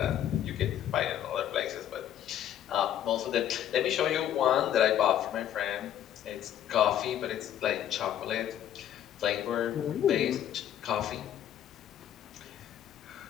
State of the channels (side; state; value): right; quieter; 10.8 dB